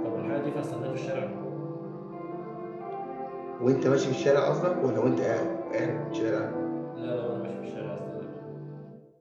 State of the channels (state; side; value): identical; both; correlation 1.00